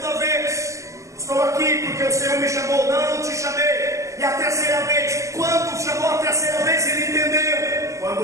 vez: estou aqui porque o Senhor me chamou. Não te chamei. E a terceira vez: quando chamou a terceira vez, ele entendeu.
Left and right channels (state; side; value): late; left; 0.15 ms